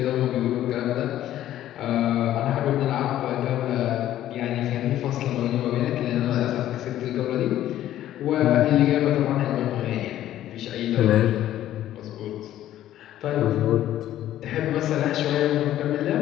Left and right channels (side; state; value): right; quieter; 12.7 dB